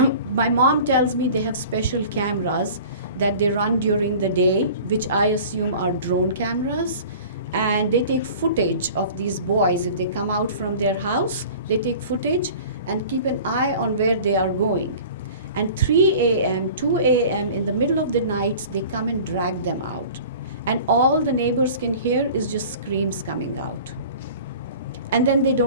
My mom tells me they have special cameras that they run during the day, which I assume are drone cameras. And they take footage of these boys. If they come out from their house, they take footage and keep an eye on where they are going. And 3 a.m., 2 a.m., in the middle of the night, they come and drag them out. And all the neighbors can hear is just screams coming out. And then they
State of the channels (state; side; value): inverted; both; correlation -0.42